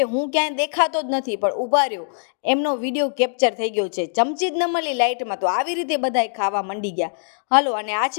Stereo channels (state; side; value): silent; right; digital silence